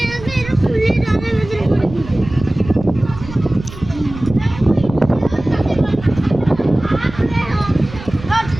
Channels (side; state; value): right; noise; rumble, 14 dB below the sound